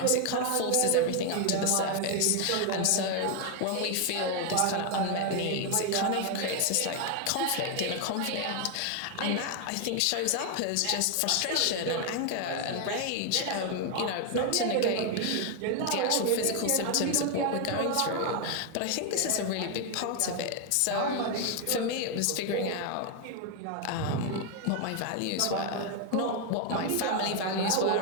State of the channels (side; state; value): both; different; correlation 0.01